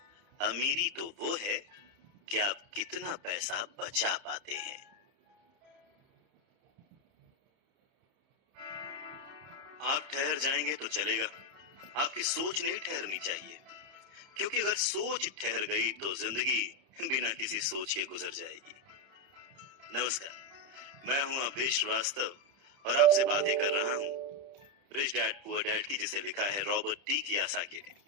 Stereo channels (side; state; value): left; late; 30 ms